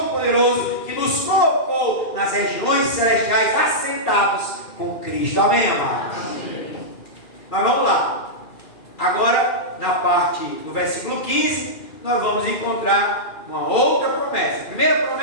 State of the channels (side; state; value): right; late; 2.4 ms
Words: que nos colocou nas regiões celestiais assentados com Cristo. Amém, amados? Amém. Mas vamos lá. Agora, na parte do versículo 15, nós vamos encontrar uma outra promessa. A primeira